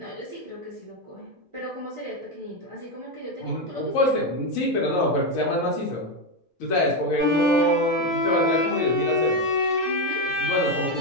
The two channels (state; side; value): normal; both; correlation 0.08